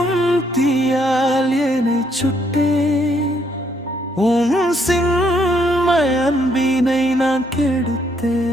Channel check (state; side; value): normal; both; correlation 0.71